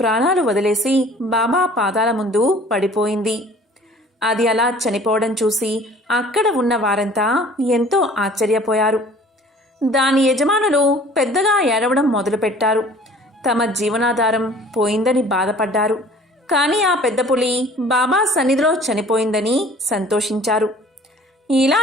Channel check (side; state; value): both; normal; correlation 0.50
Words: వదిలేసి బాబా పాదాల ముందు పడిపోయింది. అది అలా చనిపోవడం చూసి అక్కడ ఉన్న వారంతా ఎంతో ఆశ్చర్యపోయారు. దాని యజమానులు పెద్దగా ఏడవడం మొదలుపెట్టారు. తమ జీవనాధారం పోయిందని బాధపడ్డారు. కానీ ఆ పెద్ద పులి బాబా సన్నిధిలో చనిపోయిందని సంతోషించారు. ఇలా